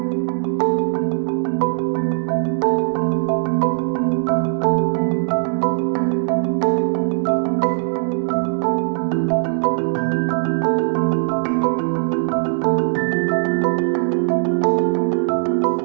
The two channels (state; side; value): silent; left; digital silence